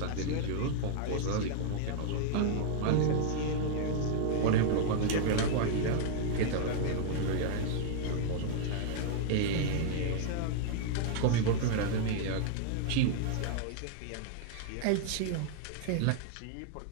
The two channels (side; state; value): both; different; correlation -0.01